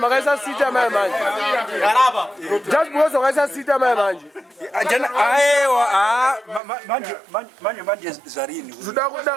sita mai manje. Just because makaisa sita mai manje. Aiwa manje zvarini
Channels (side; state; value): left; drops out; at 6.6 s